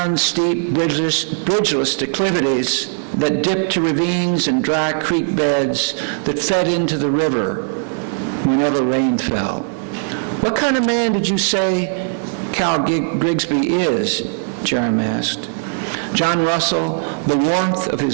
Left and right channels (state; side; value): silent; left; digital silence